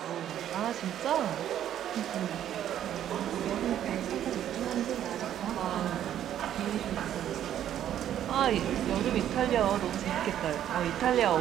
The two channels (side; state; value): left; quieter; 10.9 dB